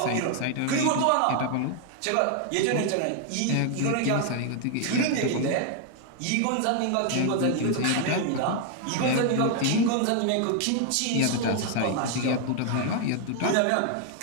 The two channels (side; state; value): both; different; correlation 0.00